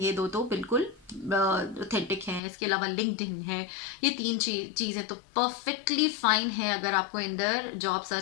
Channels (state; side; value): drops out; right; at 2.4 s